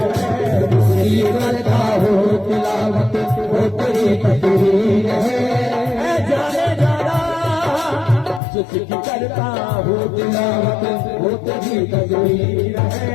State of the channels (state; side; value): drops out; right; at 8.4 s